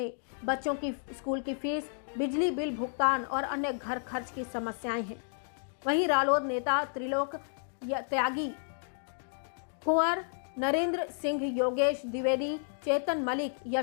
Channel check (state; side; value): silent; right; digital silence